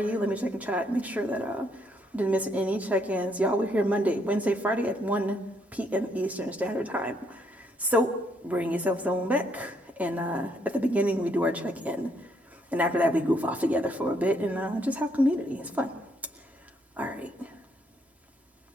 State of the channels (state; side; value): normal; both; correlation 0.72